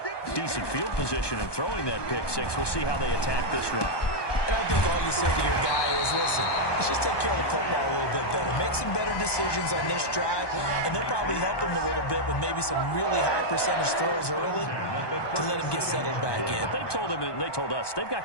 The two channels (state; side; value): late; right; 1.2 ms